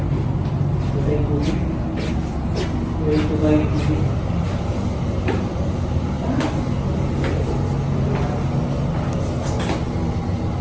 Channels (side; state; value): both; identical; correlation 1.00